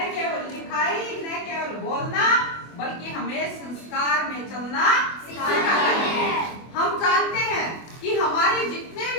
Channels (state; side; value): late; right; 24 ms